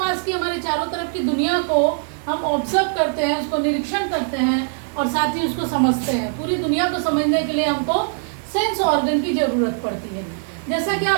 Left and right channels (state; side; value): silent; left; 58 dB below the other